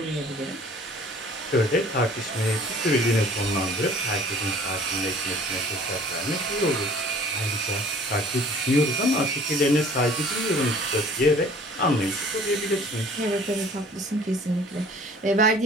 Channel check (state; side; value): normal; both; correlation 0.51